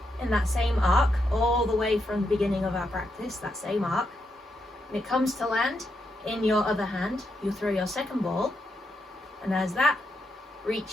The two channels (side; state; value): both; normal; correlation 0.82